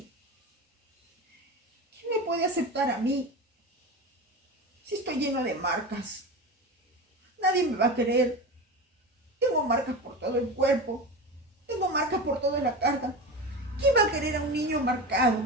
¿Quién me puede aceptar a mí? Si estoy lleno de marcas, nadie me va a querer. Tengo marcas por todo el cuerpo, tengo marcas por toda la cara. ¿Quién va a querer a un niño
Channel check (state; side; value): normal; both; correlation 0.26